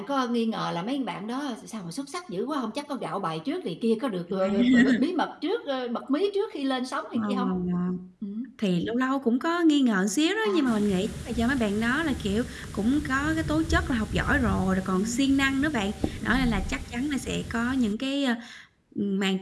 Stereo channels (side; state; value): both; identical; correlation 1.00